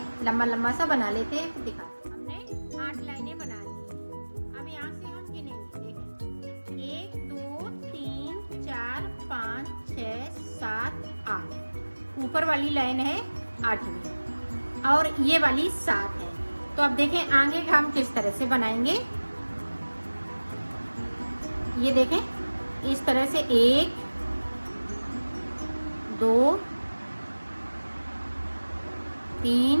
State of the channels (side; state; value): both; inverted; correlation -1.00